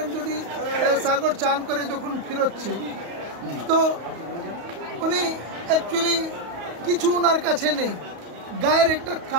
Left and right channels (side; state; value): left; late; 35 ms